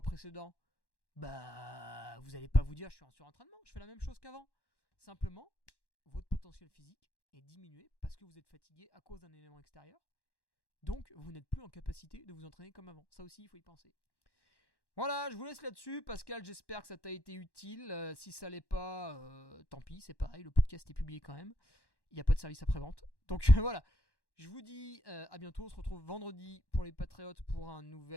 précédents, bah, vous n'allez pas vous dire je suis en surentraînement, je fais la même chose qu'avant. Simplement, votre potentiel physique est diminué parce que vous êtes fatigué à cause d'un élément extérieur. Donc, vous n'êtes plus en capacité de vous entraîner comme avant. Ça aussi, il faut y penser. Voilà, je vous laisse là-dessus. Pascal, j'espère que ça t'a été utile. Si ça l'est pas, tant pis, c'est pareil. Le podcast est publié quand même. Il n'y a pas de service après-vente. Donc voilà, je vous dis à bientôt. On se retrouve vendredi pour les Patriotes pour un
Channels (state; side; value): late; right; 1.1 ms